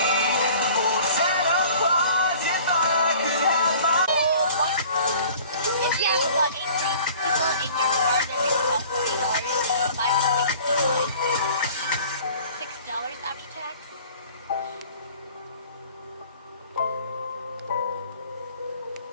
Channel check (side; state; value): both; inverted; correlation -0.48